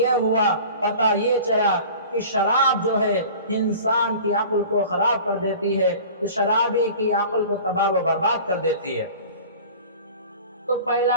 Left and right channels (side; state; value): both; inverted; correlation -0.41